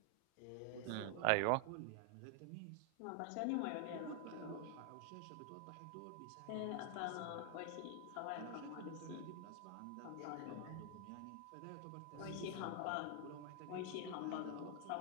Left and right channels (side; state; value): both; different; correlation 0.00